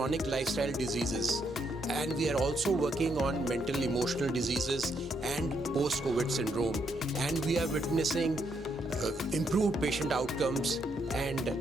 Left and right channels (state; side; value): normal; both; correlation 0.76